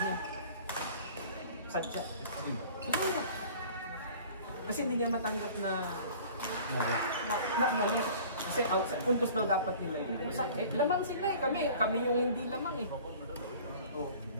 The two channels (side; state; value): both; inverted; correlation -0.46